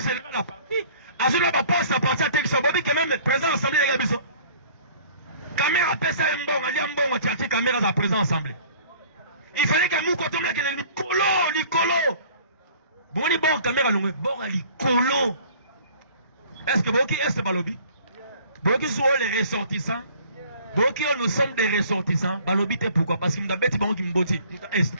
général de la partie. À ce moment-là, pas sa partie à Texas, Bobby, qui même présent à l'Assemblée de Gabiso. Caméra appelle ça un bon, un bon, tu caméra à présent Assemblée. Il fallait qu'un mou quand on a Nicolo. Bon, il bon, caméra longue, bon, Nicolo. Est-ce que Boki est Balobi? Boki sont les ressortissants. Boki, nous sommes des ressortissants. Balobi, t'es pourquoi? Parce qu'il m'a bêti, bon, qui me botti. Est.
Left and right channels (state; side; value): inverted; both; correlation -0.51